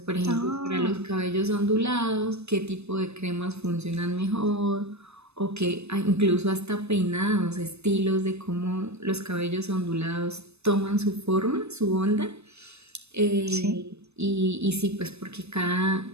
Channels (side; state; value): left; late; 0.80 ms